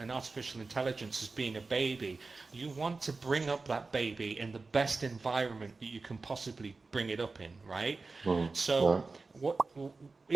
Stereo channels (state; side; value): quieter; left; 3.9 dB